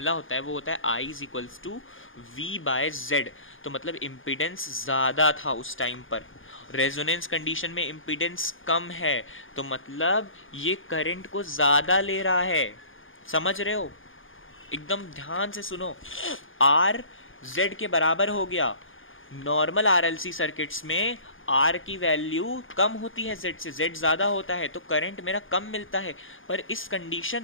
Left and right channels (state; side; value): late; right; 0.58 ms